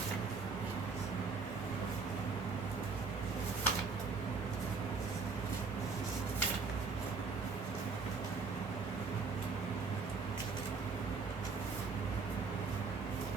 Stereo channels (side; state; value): left; quieter; 4.6 dB